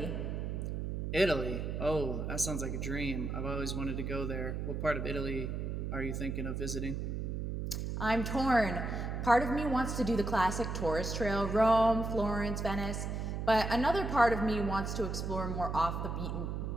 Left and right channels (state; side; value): noise; right; hum, 3 dB below the sound